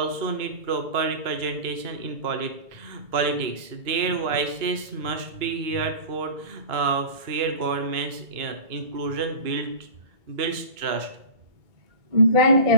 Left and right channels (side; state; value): left; late; 2.2 ms